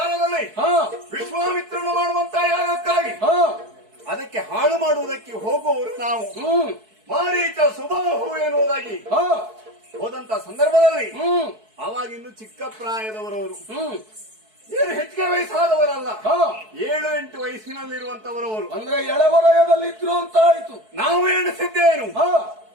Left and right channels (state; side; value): late; left; 4.6 ms